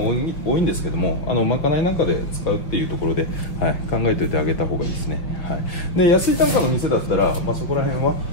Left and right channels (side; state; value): right; late; 5.4 ms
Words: 多いんですけどもまかないなんかで使うっていうところで、考えておいてあげた方がいいですね。で安い単価の店だったら、そこら辺は